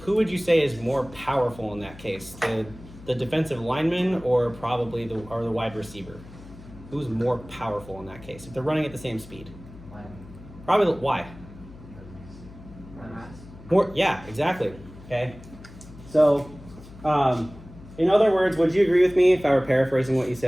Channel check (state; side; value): noise; left; hum, 18 dB below the sound